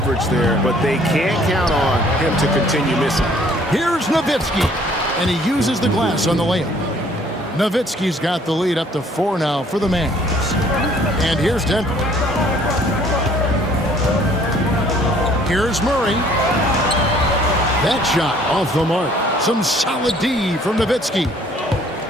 there, but they can't count on him to continue missing. Here's Nowitzki, and he uses the glass on the layup. Nowitzki's got the lead up to 4 now for the Mavs. And here's Denver. Here's Murray. That shot off the mark. Some solid D from Nowitzki.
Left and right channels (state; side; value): normal; both; correlation 0.59